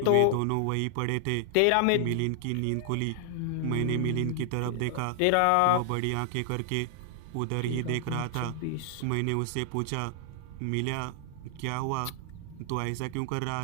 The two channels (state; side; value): different; both; correlation 0.00